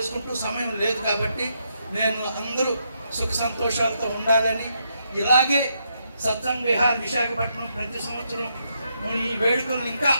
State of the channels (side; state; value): both; inverted; correlation -0.79